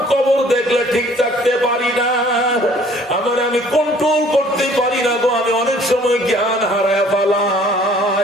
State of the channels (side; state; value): both; normal; correlation 0.56